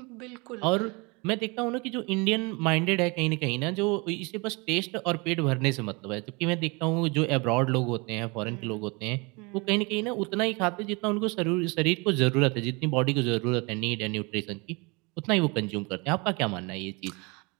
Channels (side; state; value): left; quieter; 28.3 dB